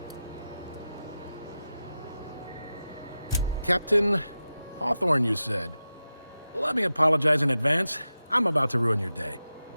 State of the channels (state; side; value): inverted; both; correlation -0.92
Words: Captain Hawthorne, you said. Let me apologize in advance. I'm about to ruin your day.